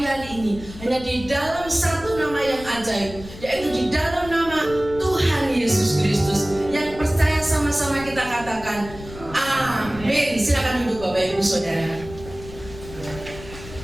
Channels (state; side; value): noise; left; rumble, 15 dB below the sound